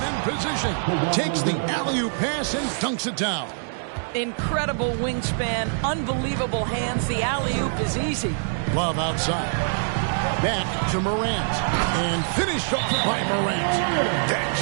in position. Takes the alley-oop pass and dunks it down. Incredible wingspan, unbelievable hands. The alley-oop is easy. Love outside. Back to Morant. And finished off by Morant. That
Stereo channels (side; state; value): left; silent; digital silence